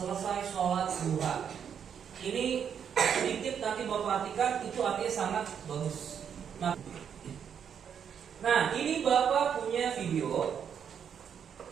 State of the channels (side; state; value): left; quieter; 7.9 dB